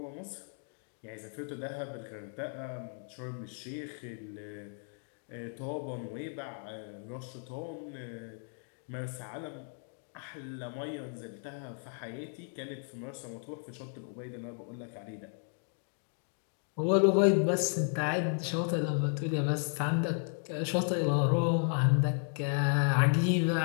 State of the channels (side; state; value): right; silent; 55 dB below the other